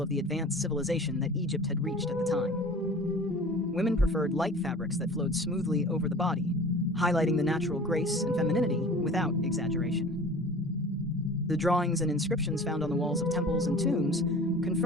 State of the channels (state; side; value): normal; both; correlation 0.42